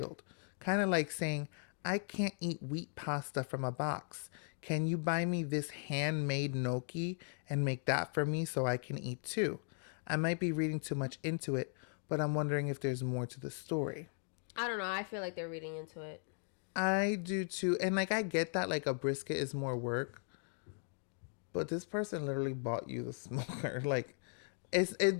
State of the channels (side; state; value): right; silent; 53 dB below the other